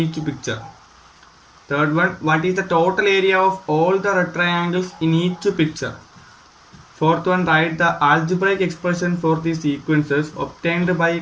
each picture. Third one, what is the total area of all the red triangles in each picture? Fourth one, write the algebraic expression for these sequences obtained by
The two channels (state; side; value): identical; both; correlation 1.00